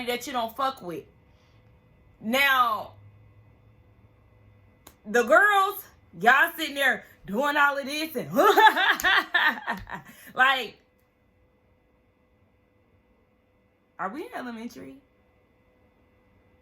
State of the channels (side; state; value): both; identical; correlation 1.00